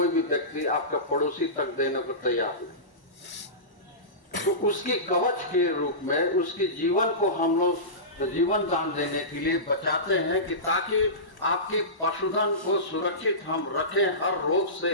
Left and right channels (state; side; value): late; right; 1.1 ms